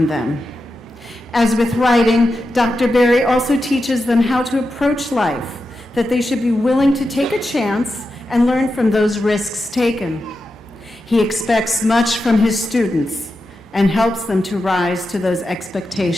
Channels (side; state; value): both; normal; correlation 0.89